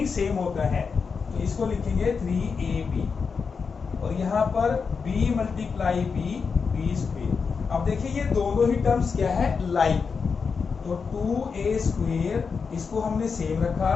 सेम होता है, तो इसको लिखेंगे 3ab, और यहां पर b मल्टीप्लाई b स्क्वेयर। अब देखिए ये दोनों ही टर्म्स क्या है, लाइक, तो 2a स्क्वेयर इसको हमने सेम रखा,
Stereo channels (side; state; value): right; quieter; 5.4 dB